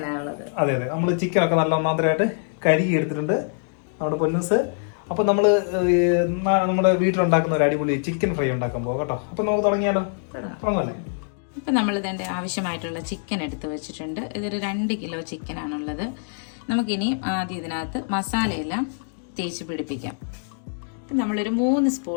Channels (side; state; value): right; silent; digital silence